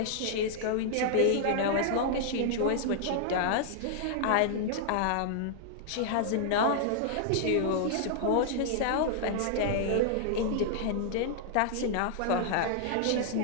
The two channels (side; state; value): both; different; correlation -0.01